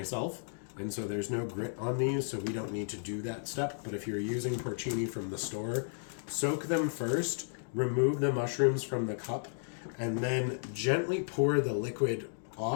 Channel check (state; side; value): silent; right; digital silence